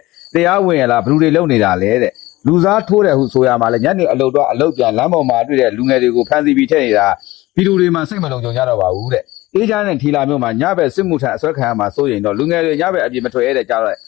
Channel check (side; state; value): right; quieter; 18.8 dB